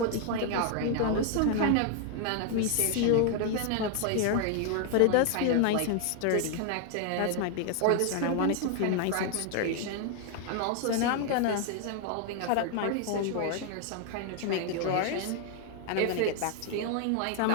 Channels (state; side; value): different; both; correlation 0.00